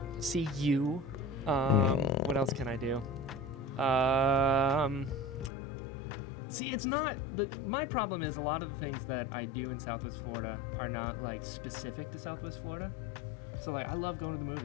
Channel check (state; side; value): drops out; right; at 5.5 s